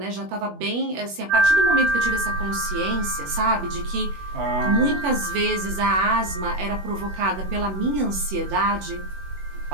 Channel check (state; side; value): late; left; 21 ms